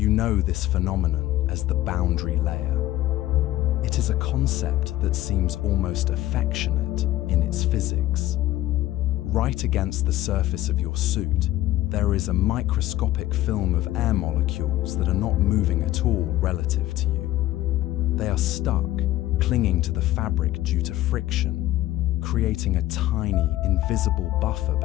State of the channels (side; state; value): right; quieter; 15.2 dB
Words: You know this phenomenon as the boundary layer. It is a concept that seems almost affectionate in its physics. Right against the surface of your suit, there is a microscopic film of air molecules that are not moving at all relative to you. They are stuck, clinging to the fabric due to friction, creating a tiny, invisible buffer